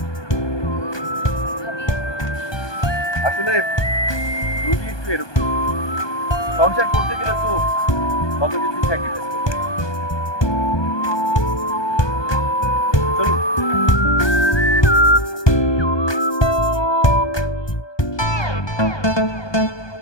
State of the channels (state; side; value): late; right; 1.2 ms